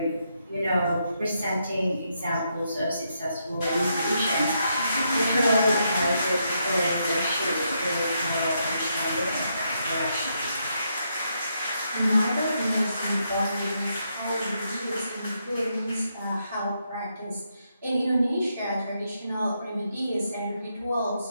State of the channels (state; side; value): inverted; both; correlation -0.79